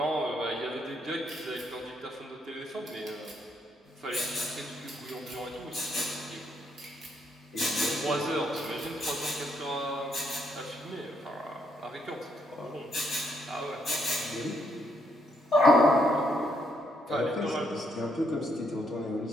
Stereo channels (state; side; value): normal; both; correlation 0.74